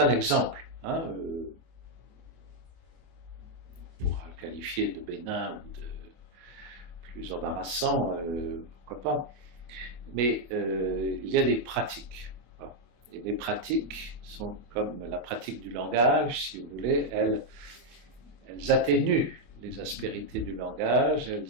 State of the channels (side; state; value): left; late; 24 ms